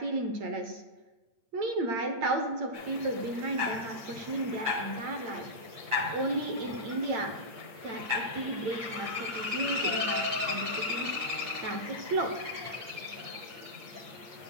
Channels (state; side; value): late; left; 8.3 ms